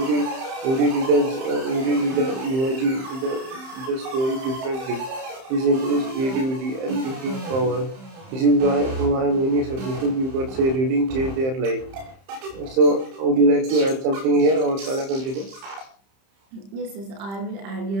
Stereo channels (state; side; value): late; left; 30 ms